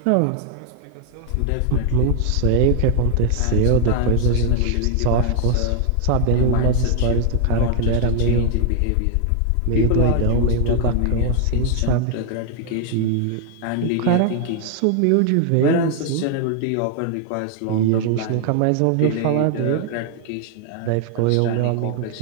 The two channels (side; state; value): both; different; correlation 0.00